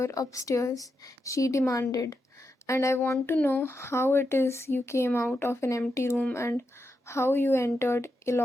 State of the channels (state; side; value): normal; both; correlation 0.86